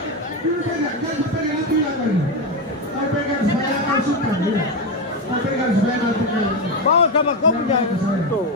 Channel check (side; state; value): both; normal; correlation 0.11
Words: Dulu pegang, jangan pegang itu lagi. Kau pegang supaya kau suka. Kau pegang supaya nanti kau. Bawa sama kau punya itu.